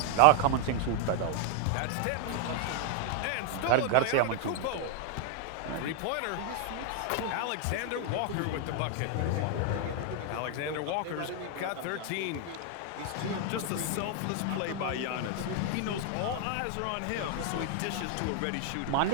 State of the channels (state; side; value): different; both; correlation 0.00